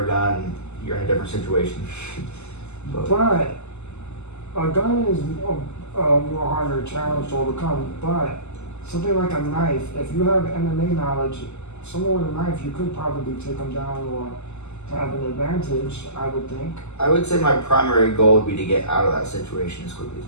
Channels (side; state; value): right; late; 0.82 ms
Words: a gun, you're in a different situation. But a gun is a more harder challenge to overcome. But something like a knife, if you have MMA knowledge, someone with a knife, you could probably take them down or have an advantage, I would think. I would say my primary goal would be to get out of that situation as quickly as